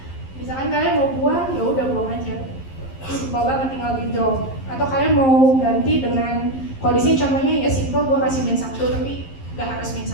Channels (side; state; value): right; late; 11 ms